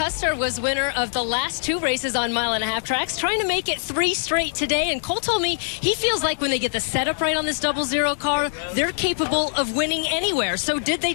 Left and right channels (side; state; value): right; silent; digital silence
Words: was winner of the last two races on mile-and-a-half tracks, trying to make it 3 straight today. And Cole told me he feels like when they get the setup right on this 00 car, they're capable of winning anywhere. So did they